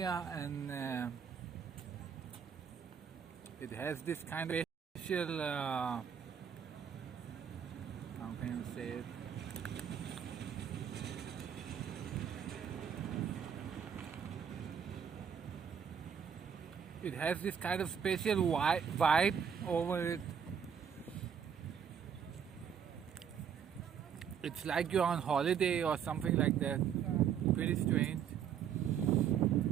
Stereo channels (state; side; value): quieter; left; 7.9 dB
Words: and it has this kind of special, how can you say it? It has this kind of special vibe over it. It's like you're on holiday or something like that. Pretty strange.